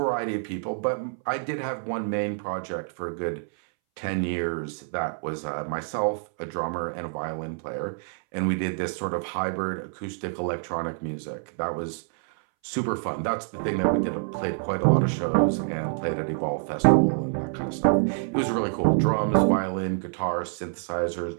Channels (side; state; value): left; silent; 60 dB below the other